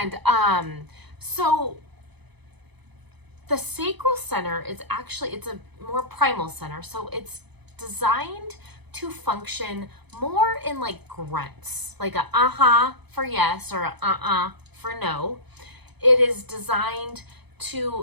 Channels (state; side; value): late; left; 0.99 ms